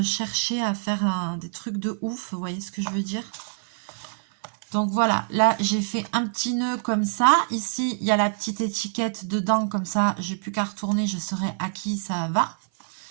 cherché à faire des trucs de ouf, vous voyez ce que je veux dire? Donc voilà, là j'ai fait un petit nœud comme ça. Ici, il y a la petite étiquette dedans, comme ça, j'ai plus qu'à retourner, je saurai à qui ça va.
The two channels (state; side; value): silent; left; 57 dB below the other